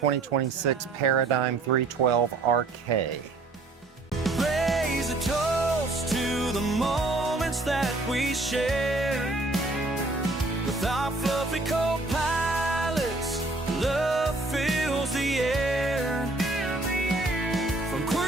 Paradigm 312 RK. Raise a toast to the moments that we share with our fluffy co-pilots. Love fills the air. From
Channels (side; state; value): left; quieter; 3.0 dB